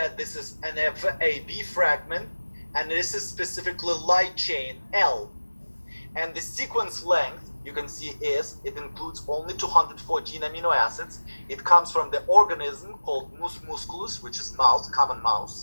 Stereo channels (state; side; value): inverted; both; correlation -1.00